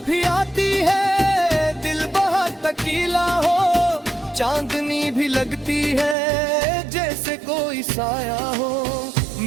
भी आती है दिल बहुत तकीला हो, चांदनी भी लगती है जैसे कोई साया हो।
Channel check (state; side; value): drops out; left; at 6.2 s